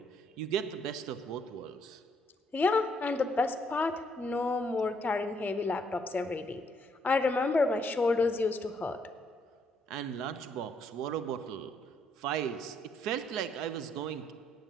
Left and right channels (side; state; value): both; normal; correlation 0.71